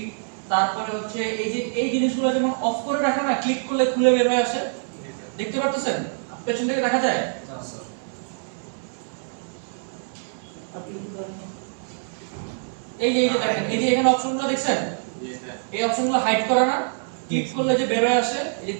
তারপরে হচ্ছে এই যে এই জিনিসগুলো যেমন অফ করে রাখা না, ক্লিক করলে খুলে বের হয়ে আসে, দেখতে পাচ্ছেন পেছন থেকে দেখা যায়। এই যে দেখেন, এই যে এখানে অপশনগুলো দেখছেন, এই অপশনগুলো হাইড করা না, ক্লিক করলে যে বের হয়ে আসে, এই যে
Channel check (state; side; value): silent; left; 62 dB below the other